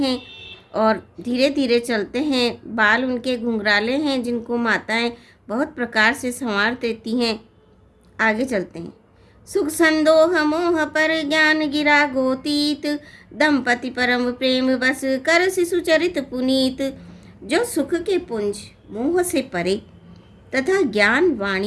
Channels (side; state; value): both; identical; correlation 1.00